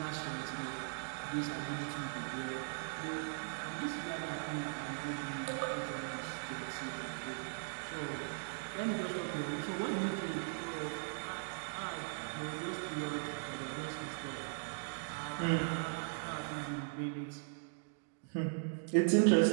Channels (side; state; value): left; silent; digital silence